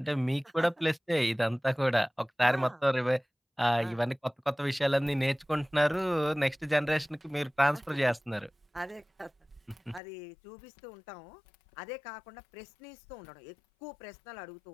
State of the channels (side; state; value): right; drops out; at 10.0 s